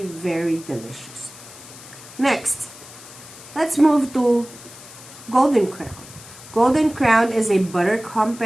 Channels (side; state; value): left; noise; hiss, 18 dB below the sound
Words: very delicious. Next, let's move to Golden Crown. Golden Crown is a butter